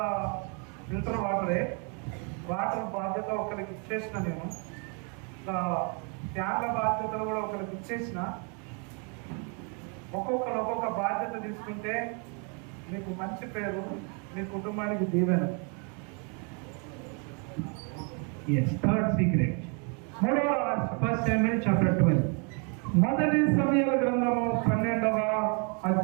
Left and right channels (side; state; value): left; quieter; 36.8 dB